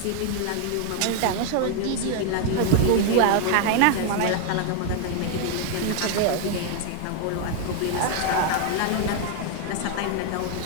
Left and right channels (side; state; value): both; different; correlation 0.00